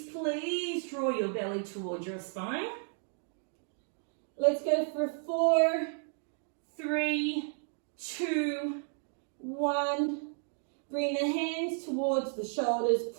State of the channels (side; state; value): left; silent; 56 dB below the other